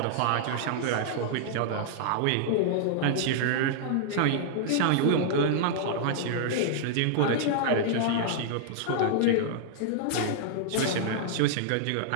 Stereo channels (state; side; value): different; both; correlation -0.01